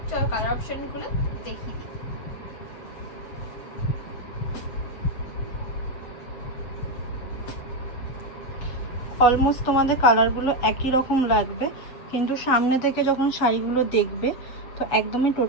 চলো কালার অপশনগুলো দেখিয়ে দিই। অলমোস্ট তোমাদের কালারগুলো একই রকম লাগবে, কিন্তু সামনে থেকে যখন শাড়িগুলো দেখবে তো একদমই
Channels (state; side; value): late; right; 8.0 ms